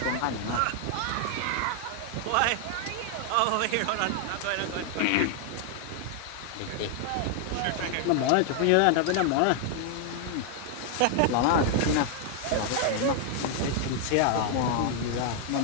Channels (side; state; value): both; different; correlation 0.00